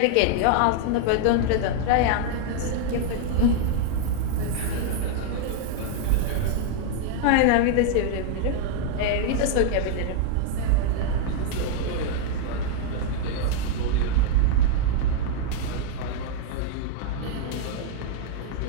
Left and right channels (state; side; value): different; both; correlation -0.01